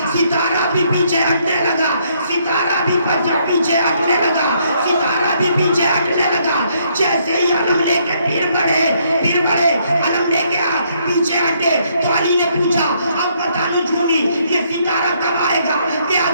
ستارہ بھی پیچھے ہٹنے لگا، ستارہ بھی پیچھے ہٹنے لگا، ستارہ بھی پیچھے ہٹنے لگا، جیسے ہی علم لے کے پھر بڑھے، علم لے کے پیچھے ہٹے تو علی نے پوچھا اب بتا نجومی یہ ستارہ کب آئے گا کہ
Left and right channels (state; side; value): inverted; both; correlation -0.70